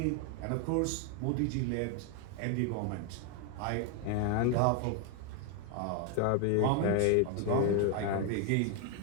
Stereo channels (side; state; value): both; different; correlation 0.01